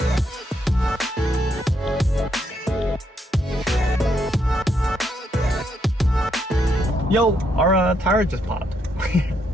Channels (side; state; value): both; normal; correlation 0.76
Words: Yo, our tire just popped.